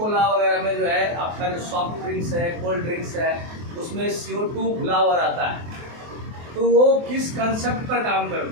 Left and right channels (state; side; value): late; left; 24 ms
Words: वगैरह में जो है आपका जो सॉफ्ट ड्रिंक्स है, कोल्ड ड्रिंक्स है, उसमें CO2 घुला हुआ रहता है। तो वो किस कंसेप्ट पर काम